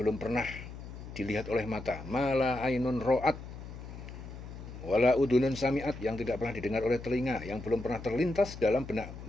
pernah dilihat oleh mata, mala ainun ro'at, wala udunun sami'at, yang tidak pernah didengar oleh telinga, yang belum pernah terlintas dalam benak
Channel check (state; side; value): noise; left; hum, 12 dB below the sound